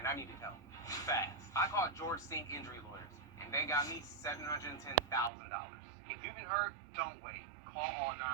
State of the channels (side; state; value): left; drops out; at 5.3 s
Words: I needed help. Fast. I called George Sink Injury Lawyers, and they got me $710,000. If you've been hurt, don't wait. Call all